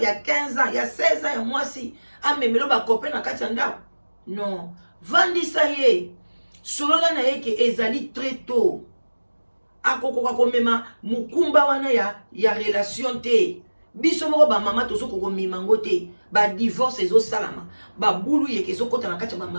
y a 15 ans, il y a 16 ans, il y a moi si. Ah, mais me lo ba copain na katanda. Non. Vandi sa ye. Solola na ye ke ezali très tôt. Akoko ko mema mukumba wana ya relation te. Biso moko ba mama to so ko mimango te. Ba divorce ezo salama. Ba bulu ye ke so kota na kati ba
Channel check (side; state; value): both; inverted; correlation -1.00